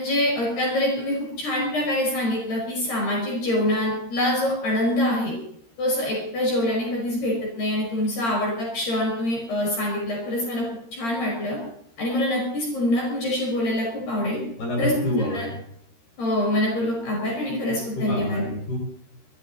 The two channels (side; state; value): right; late; 13 ms